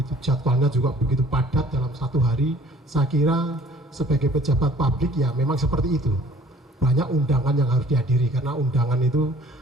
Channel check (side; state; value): both; normal; correlation 0.54